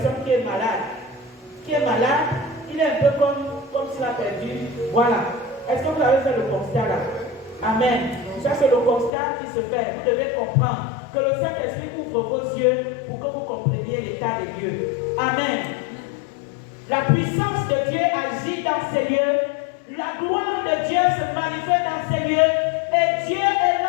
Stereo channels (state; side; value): drops out; right; at 9.1 s